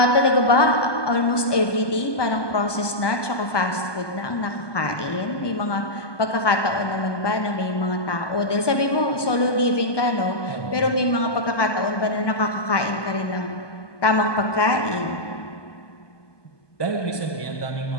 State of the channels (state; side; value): late; right; 1.2 ms